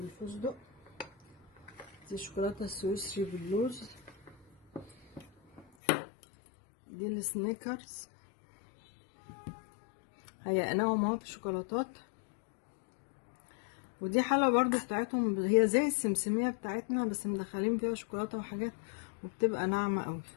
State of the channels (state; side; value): drops out; right; at 5.7 s